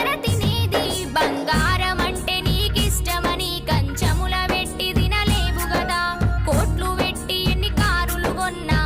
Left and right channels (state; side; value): identical; both; correlation 1.00